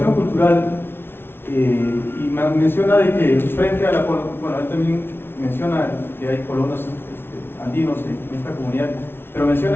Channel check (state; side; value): late; right; 0.11 ms